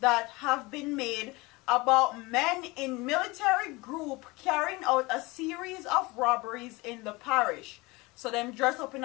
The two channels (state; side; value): quieter; right; 23.5 dB